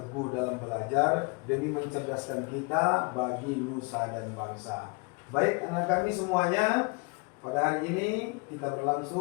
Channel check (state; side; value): quieter; right; 31.1 dB